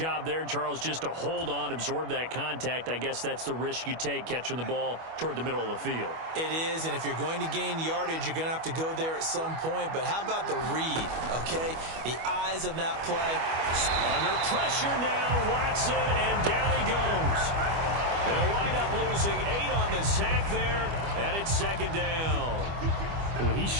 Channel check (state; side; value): late; left; 25 ms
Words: there, Charles, just to hold on, absorb that contact. I guess that's the risk you take catching the ball toward the middle of the field. It is, and if you're going to gain yardage, you're going to have to go there at some point. But how about the read, okay? The eyes of that play. Under pressure now, Watson, and down he goes. They'll wind up losing 8 on the sack there, and it's second down. Well, he